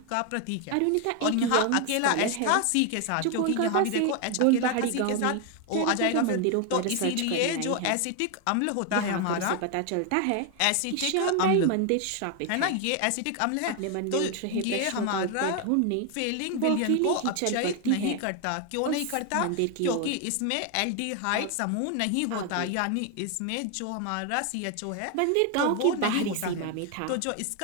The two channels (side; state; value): both; different; correlation 0.01